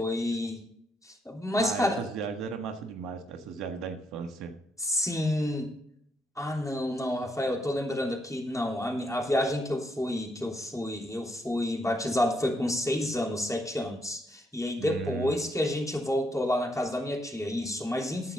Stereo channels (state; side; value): normal; both; correlation 0.76